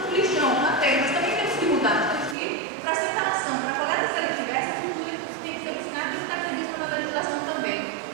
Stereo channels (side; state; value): left; drops out; at 2.4 s